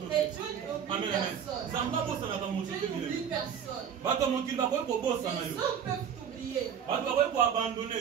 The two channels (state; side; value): quieter; left; 8.1 dB